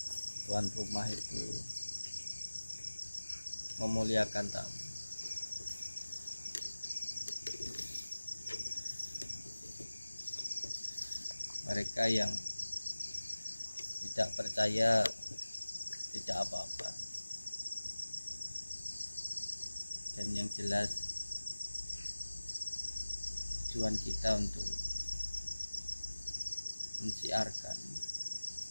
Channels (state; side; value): inverted; both; correlation -1.00